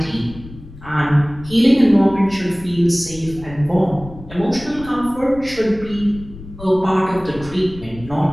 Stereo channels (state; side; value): noise; left; rumble, 16 dB below the sound